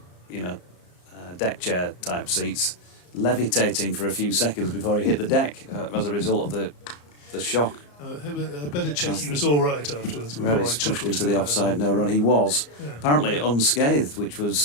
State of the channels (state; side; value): late; right; 34 ms